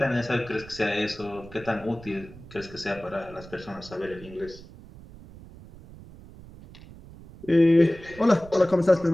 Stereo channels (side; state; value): right; noise; rumble, 18 dB below the sound